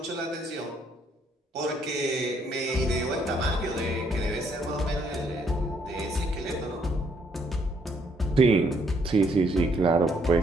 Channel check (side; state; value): both; normal; correlation 0.69